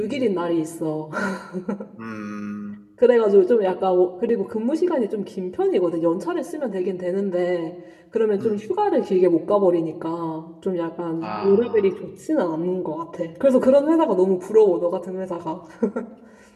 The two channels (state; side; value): identical; both; correlation 1.00